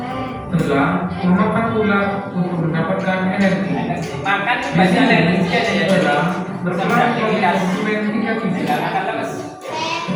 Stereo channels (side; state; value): both; identical; correlation 1.00